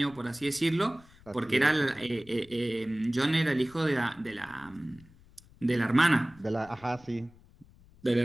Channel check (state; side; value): noise; left; rumble, 25 dB below the sound